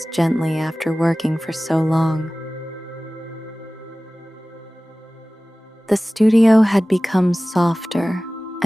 gently after working for so long. The studio had become softer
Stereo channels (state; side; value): normal; both; correlation 0.97